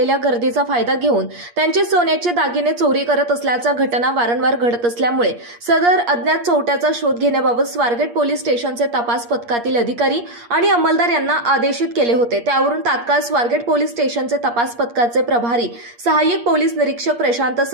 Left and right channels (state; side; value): late; left; 8.5 ms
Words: गर्दीचा फायदा घेऊन त्यांचे सोन्याचे दागिने चोरी करत असल्याच्या घटना वारंवार घडत असल्यामुळे सदर अज्ञात चोरट्याचा शोध घेण्याबाबत स्वारगेट पोलीस स्टेशनचे तपास पथकातील अधिकारी आणि अंमलदार यांना आदेशित केले होते। त्यावरून तात्काळ स्वारगेट पोलीस स्टेशनचे तपास पथकाचे प्रभारी सहाय्यक पोलीस निरीक्षक प्रशांत